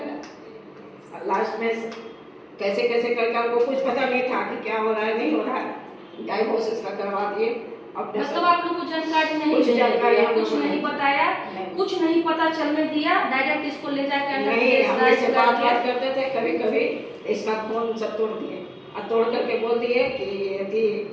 लास्ट में कैसे कैसे करके हमको कुछ पता नहीं था कि क्या हो रहा है नहीं हो रहा है, डाइवोर्स इसका करवा दिए। मतलब आप लोग को जानकारी नहीं, कुछ जानकारी कुछ नहीं बताया, कुछ नहीं पता चलने दिया, डायरेक्ट इसको ले जाकर नहीं, हम इससे बात करते थे कभी कभी, इसका फोन सब तोड़ दिए और तोड़ करके बोल दिए कि यदि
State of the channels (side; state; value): both; identical; correlation 1.00